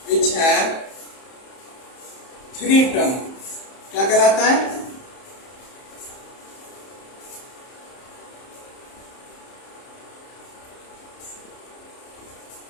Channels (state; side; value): late; right; 31 ms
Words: which have three term क्या कहलाता है?